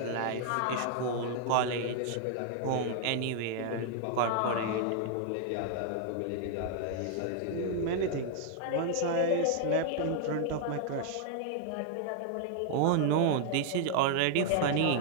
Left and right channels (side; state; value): both; different; correlation 0.00